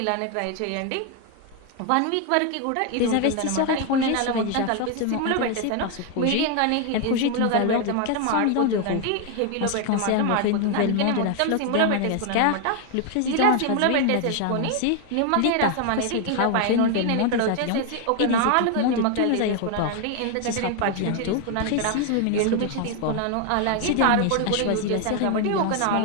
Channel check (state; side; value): different; both; correlation 0.01